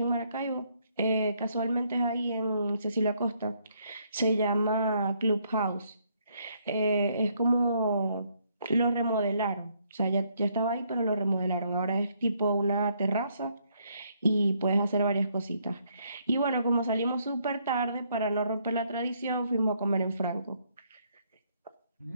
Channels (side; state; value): both; inverted; correlation -0.71